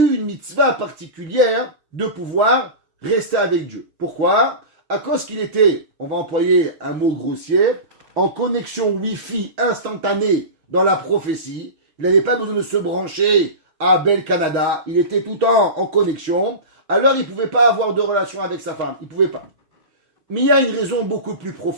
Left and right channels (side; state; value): left; late; 6.3 ms